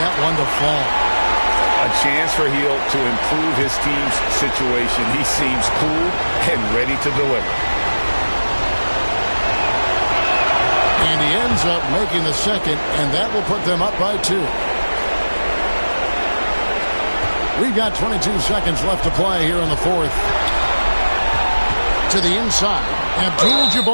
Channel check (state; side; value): inverted; both; correlation -1.00